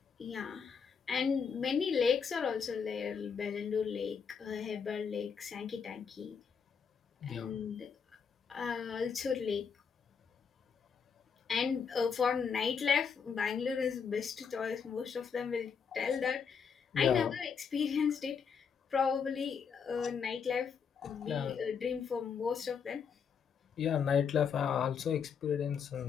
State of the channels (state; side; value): quieter; right; 6.5 dB